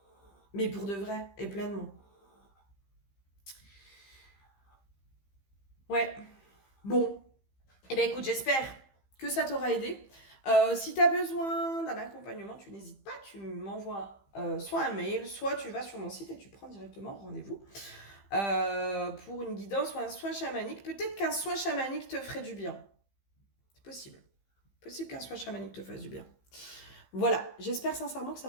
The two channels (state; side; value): late; right; 15 ms